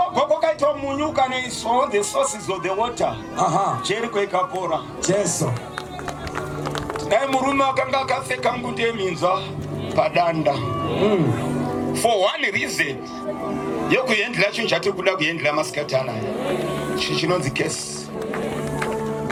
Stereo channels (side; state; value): both; identical; correlation 1.00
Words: kwakaitwa munyuka neiswa the sources of the water. Jericho ikapora. Jesu. Dai murume akanga akapfeka ngude yeminzwa padanda. For one reason. Yokuendela chinhu chati kuda kuendela masikati anaya. Chinonzi case.